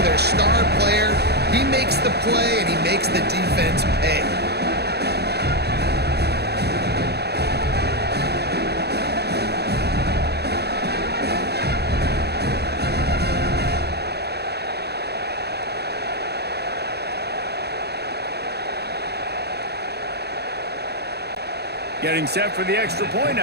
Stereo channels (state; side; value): late; left; 0.48 ms